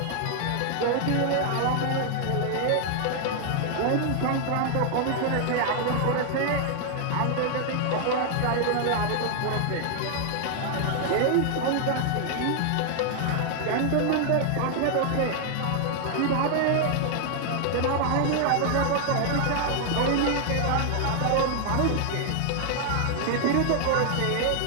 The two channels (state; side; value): different; both; correlation 0.00